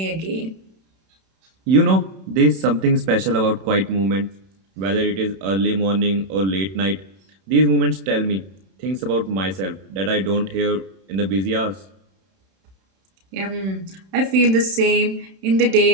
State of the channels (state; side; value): late; left; 31 ms